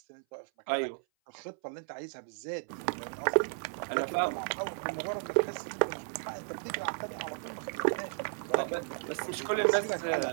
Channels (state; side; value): silent; left; 55 dB below the other